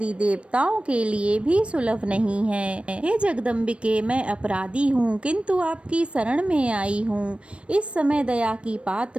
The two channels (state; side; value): late; left; 0.060 ms